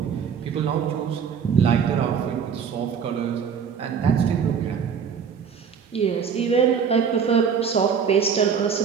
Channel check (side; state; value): left; quieter; 6.9 dB